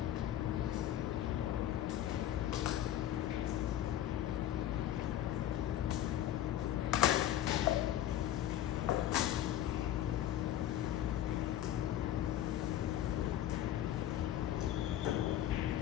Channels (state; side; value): quieter; right; 12.0 dB